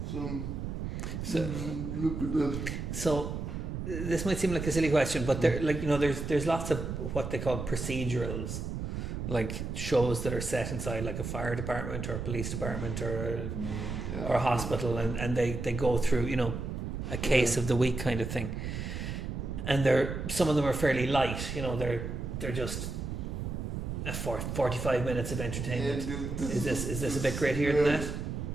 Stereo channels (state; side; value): noise; right; rumble, 4 dB below the sound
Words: Look at that. So this might seem like a silly question, but there's lots of what they call procedurals, like shows that are set inside like a fire department or a police department or a hospital, and they go through a case of the week kind of thing, and some of them are fairly light. They're just 45 minutes of entertainment. Is this a bit grittier than that?